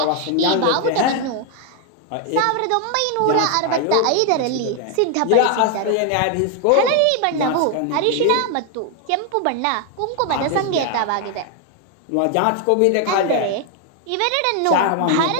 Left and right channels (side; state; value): both; different; correlation 0.00